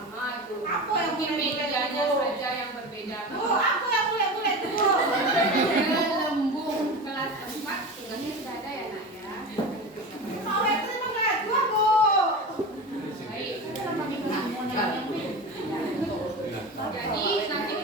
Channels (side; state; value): both; normal; correlation 0.28